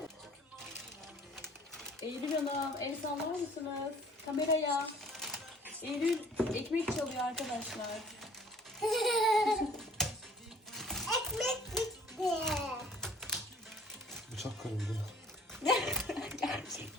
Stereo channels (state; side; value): normal; both; correlation 0.53